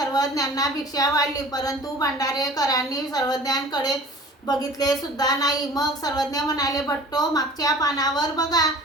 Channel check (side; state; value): both; normal; correlation 0.45